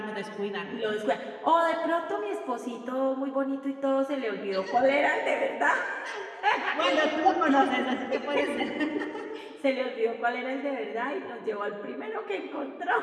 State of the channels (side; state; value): both; identical; correlation 1.00